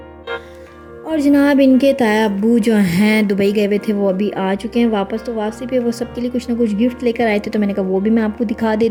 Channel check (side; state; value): both; identical; correlation 1.00